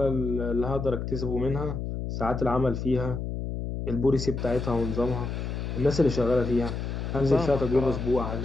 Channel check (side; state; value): left; noise; hum, 4 dB below the sound